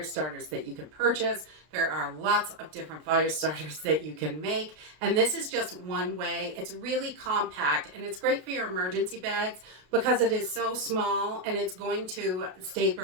starters that you can purchase. There are lots of different fire starters that you can make. And this is just one way. It's really compact and it's great for your emergency bags because it is so small and it's going to stay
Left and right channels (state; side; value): late; left; 33 ms